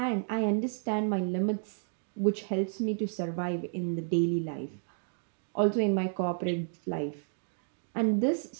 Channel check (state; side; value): silent; left; digital silence